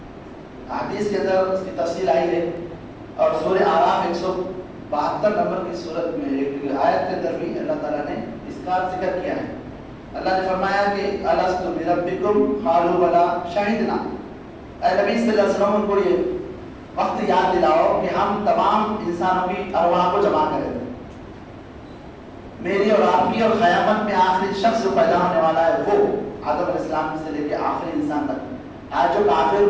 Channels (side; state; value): both; identical; correlation 1.00